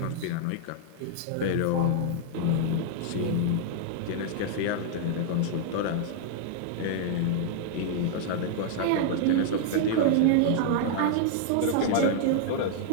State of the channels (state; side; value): different; both; correlation -0.01